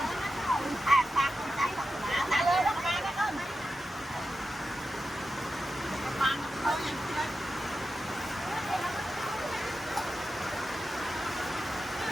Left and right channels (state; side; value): normal; both; correlation 0.90